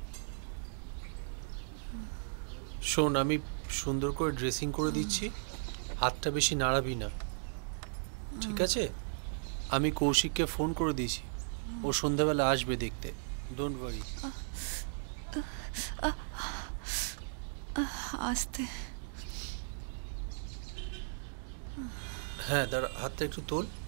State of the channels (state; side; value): silent; left; digital silence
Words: শোন, আমি সুন্দর করে ড্রেসিং করে দিচ্ছি, হাতটা বেশি নাড়াবি না, ঠিক আছে? আমি কৌশিককে ফোন করে দিয়েছি, ও সন্ধ্যাবেলা আসবে দেখতে, ডোন্ট ওয়ারি। আস্তে। হ্যাঁ দাঁড়া, হাতটা একটু তোল।